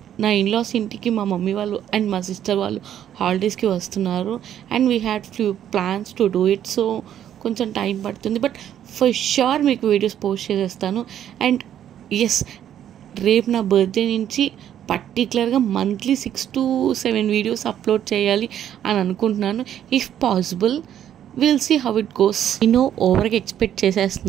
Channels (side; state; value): left; quieter; 10.4 dB